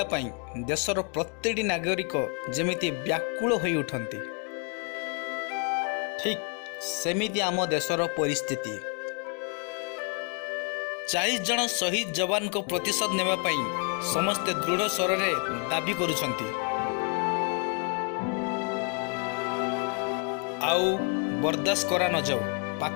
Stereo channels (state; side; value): quieter; right; 37.8 dB